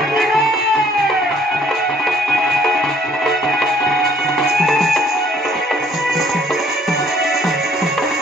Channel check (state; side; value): normal; both; correlation 0.62